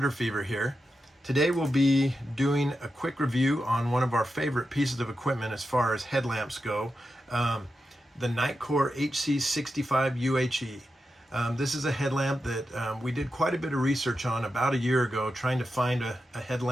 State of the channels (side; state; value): both; normal; correlation 0.89